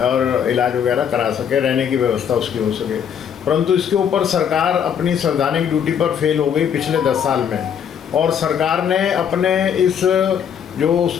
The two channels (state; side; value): quieter; right; 8.2 dB